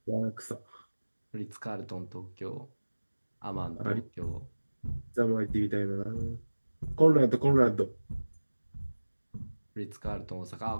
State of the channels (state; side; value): inverted; both; correlation -1.00